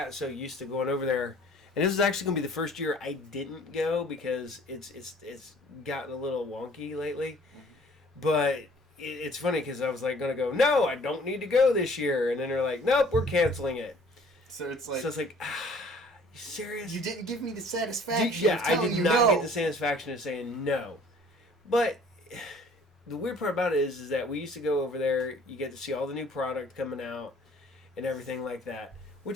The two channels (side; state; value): both; normal; correlation 0.54